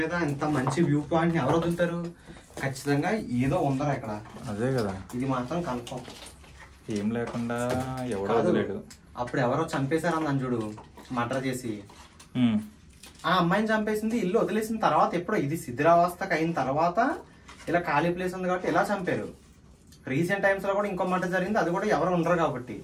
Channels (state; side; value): identical; both; correlation 1.00